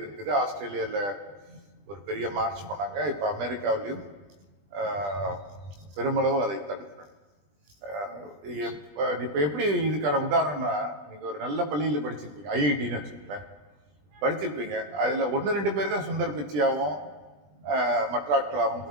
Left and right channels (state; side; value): late; left; 20 ms